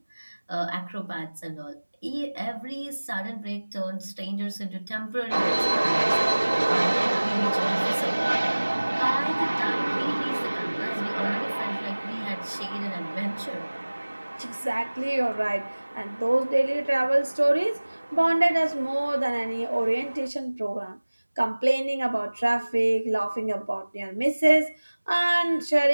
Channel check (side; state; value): both; inverted; correlation -1.00